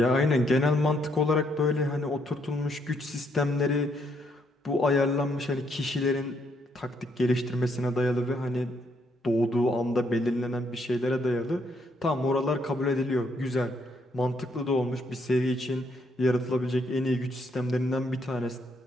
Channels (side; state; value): both; normal; correlation 0.73